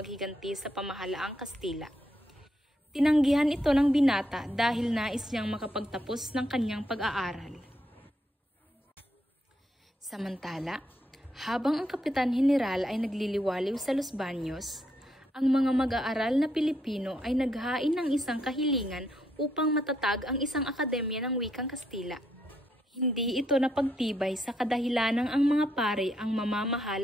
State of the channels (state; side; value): normal; both; correlation 0.77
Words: sa pamahalaang Kastila. Tinanggihan ito ng binata dahil nais niyang makapagtapos ng kanyang pag-aaral. Samantala, habang ang Kapitan General ay nagliliwaliw sa Los Baños, ang mga mag-aaral na Pilipino ay naghain ng isang kahilingan upang matatag ang isang akademya ng wikang Kastila. Hindi ito napagtibay sa kadahilanang ang mga pare ang